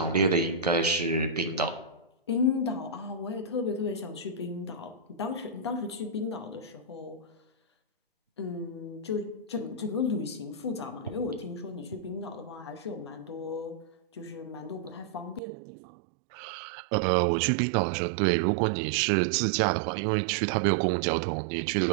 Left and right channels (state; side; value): drops out; left; at 15.4 s